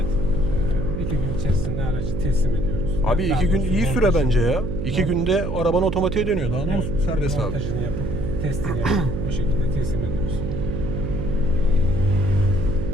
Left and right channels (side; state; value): right; noise; hum, 3 dB below the sound